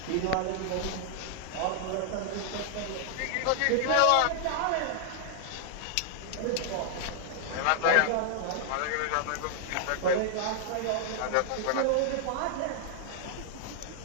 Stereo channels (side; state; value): both; different; correlation -0.01